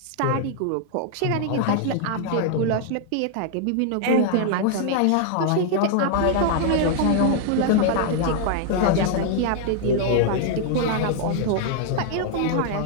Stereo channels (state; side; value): different; both; correlation 0.00